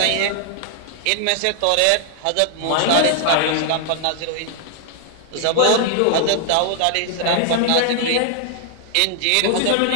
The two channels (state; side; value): different; both; correlation 0.00